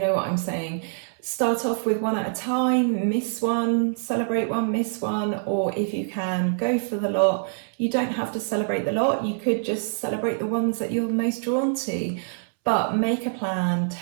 know what I'm saying. Start off with one at a time, miss one, celebrate one, miss one, or if you can, go for the lot. You don't have to celebrate the lot, you could just celebrate the ones that you're most drawn to. But make a plan,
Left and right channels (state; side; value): silent; left; 62 dB below the other